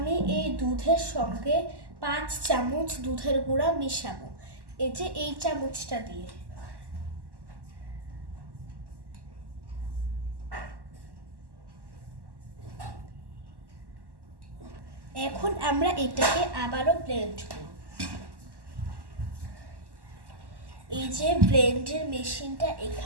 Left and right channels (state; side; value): late; left; 1.1 ms